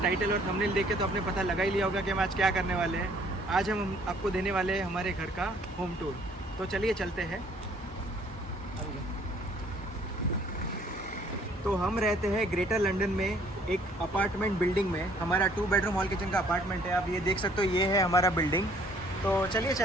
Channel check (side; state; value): both; normal; correlation 0.60